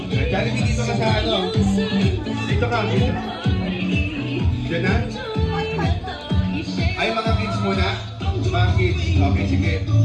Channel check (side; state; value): both; identical; correlation 1.00